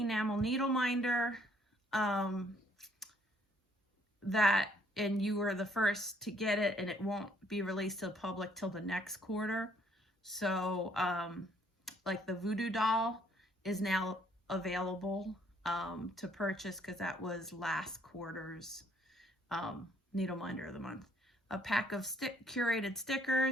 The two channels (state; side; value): normal; both; correlation 0.65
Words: needle minder and you were the first to get it, and it won't be released to the public till the next quarter. So like the Voodoo Doll is now available to purchase because that was last quarter's needle minder of the month. A pack of curated